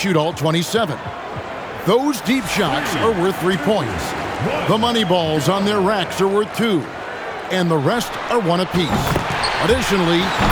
all 27. Those deep shots are worth 3 points. The money balls on their racks are worth 2, and the rest are 1 apiece. Additionally,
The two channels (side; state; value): both; identical; correlation 1.00